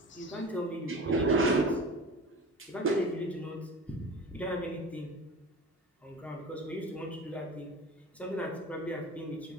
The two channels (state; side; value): normal; both; correlation 0.34